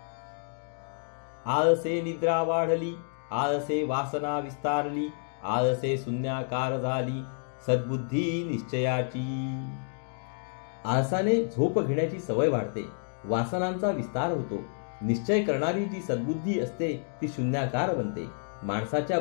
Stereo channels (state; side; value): silent; right; digital silence